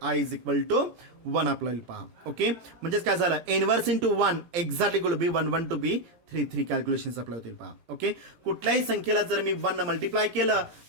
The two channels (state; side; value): late; left; 17 ms